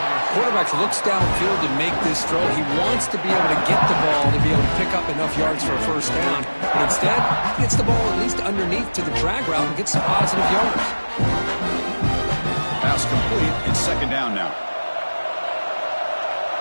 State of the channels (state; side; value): inverted; both; correlation -1.00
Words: Quarterback looks downfield to make this throw. He wants to be able to get the ball to be able to pick up enough yards for a 1st down. But instead, he gets the ball at least underneath to the drag route and gets some positive yards. Pass complete. It's 2nd down now.